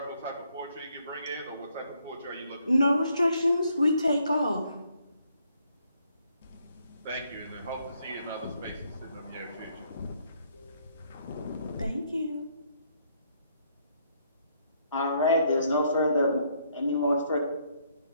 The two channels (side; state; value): both; inverted; correlation -0.70